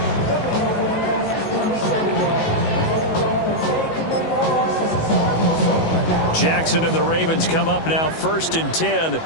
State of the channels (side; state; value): right; late; 19 ms